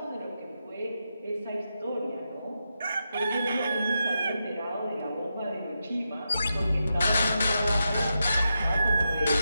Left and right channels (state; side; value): inverted; both; correlation -0.86